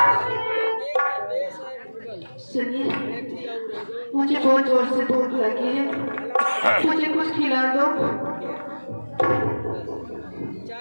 सुनिए, मुझे बहुत जोर से भूख लगी है, मुझे कुछ खिला दो।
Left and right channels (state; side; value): inverted; both; correlation -1.00